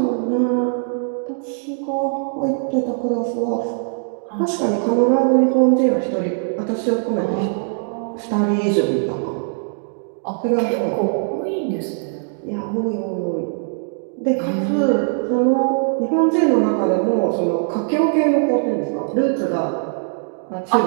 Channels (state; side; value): silent; left; digital silence